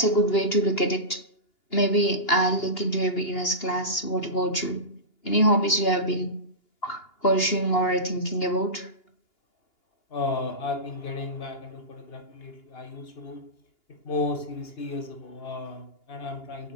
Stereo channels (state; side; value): late; right; 2.8 ms